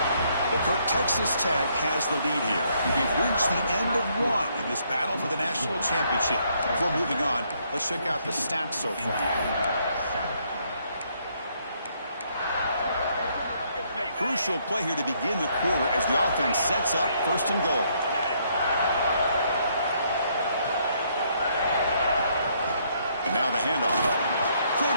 Well, Kirk, Texas Tech has the lead here. We've reached the end of one in this battle for the national championship. Before moving on, let's check out the stats so far. Crucial play here to begin the quarter as the offense sets up first and goal. And now the handoff.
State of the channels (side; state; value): both; inverted; correlation -0.71